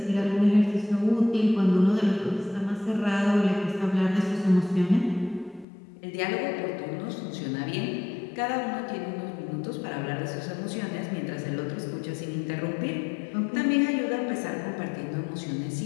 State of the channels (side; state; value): right; drops out; at 5.7 s